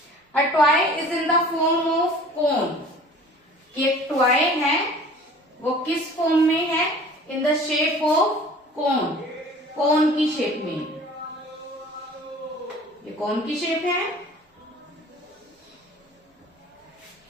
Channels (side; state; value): both; normal; correlation 0.47